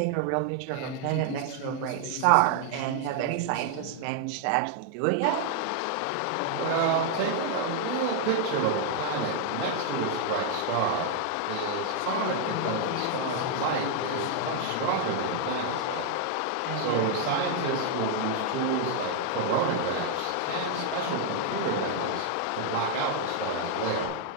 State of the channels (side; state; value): both; different; correlation 0.00